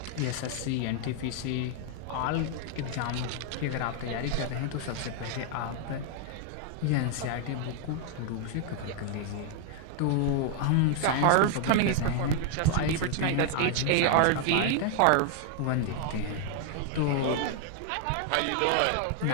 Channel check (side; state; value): both; different; correlation 0.00